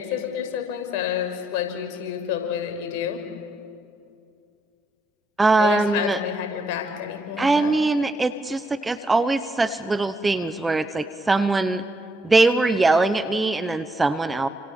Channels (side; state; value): both; normal; correlation 0.78